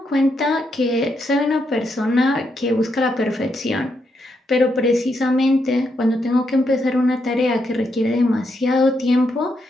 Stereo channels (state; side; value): normal; both; correlation 0.80